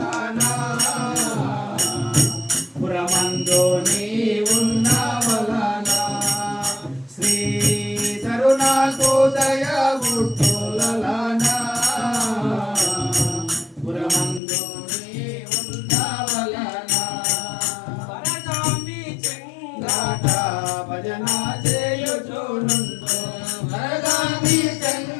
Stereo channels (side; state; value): right; drops out; at 14.4 s